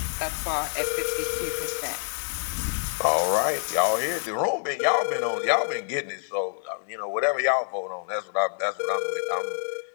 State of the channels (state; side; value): silent; right; 60 dB below the other